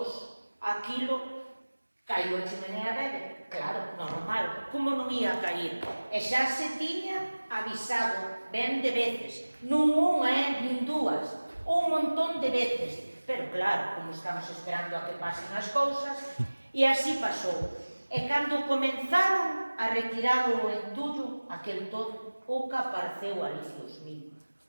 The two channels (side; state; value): both; inverted; correlation -1.00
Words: aquilo caiu a chimenea dele. Claro, normal, como non ia cair? E xa se tiña avisado ben de veces. Non unha, nin dúas, un montón de veces. Pero claro, como estamos esperando a que pasen as cousas, e así pasou. E cando comenzaron a retirar o entullo, aquel todo, o que apareceu ali, Dios mío,